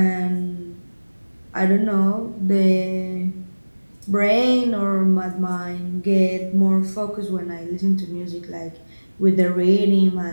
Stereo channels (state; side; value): inverted; both; correlation -1.00